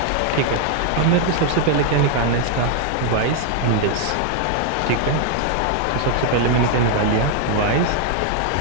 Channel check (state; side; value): different; both; correlation 0.00